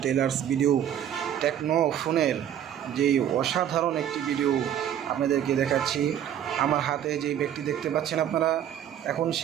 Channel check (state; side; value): quieter; left; 10.2 dB